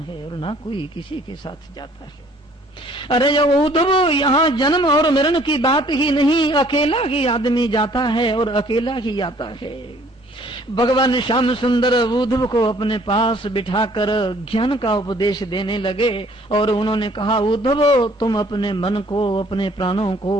और ना कोई किसी के साथ जाता है। अरे उद्धव, यहाँ जन्म और मरण की बात ही नहीं, अकेला ही आदमी जाता है और अकेला ही आता है। भगवान श्याम सुंदर उद्धव को अपने पास बिठाकर ज्ञान का उपदेश देने लगे और उन्होंने कहा, उद्धव तुम अपने मन को, अपने प्राणों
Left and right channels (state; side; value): normal; both; correlation 0.58